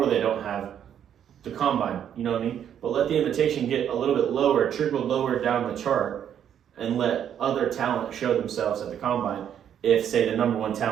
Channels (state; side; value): quieter; left; 9.4 dB